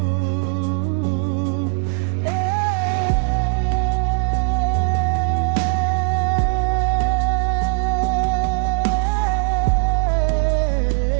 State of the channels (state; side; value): silent; left; digital silence